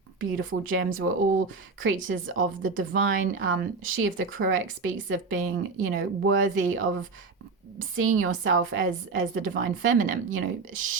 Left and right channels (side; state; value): left; quieter; 4.3 dB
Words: beautiful gems. We're all creatures of the divine. She of the Cruek speaks of being, worthy of seeing yourself as the divine feminine.